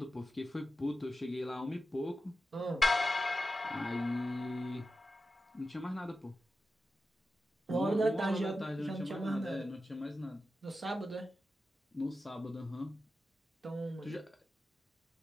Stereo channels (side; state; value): both; normal; correlation 0.92